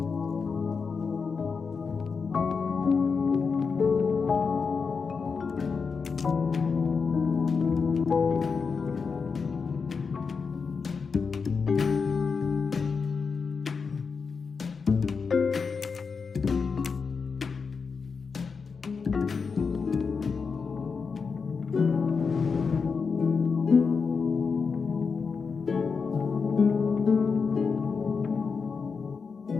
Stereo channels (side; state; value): right; quieter; 5.3 dB